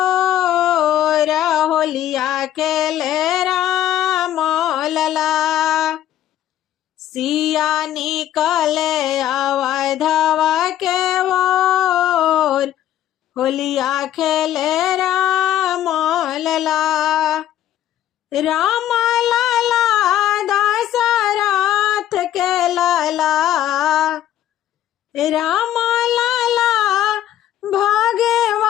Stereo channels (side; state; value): right; quieter; 11.9 dB